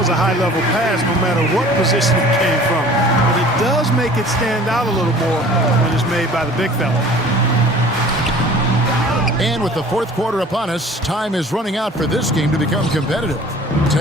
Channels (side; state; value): both; normal; correlation 0.47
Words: a high-level pass no matter what position it came from. But it does make it stand out a little more when it's made by the big fella. And with the fourth quarter upon us, time is running out for this game to become competitive.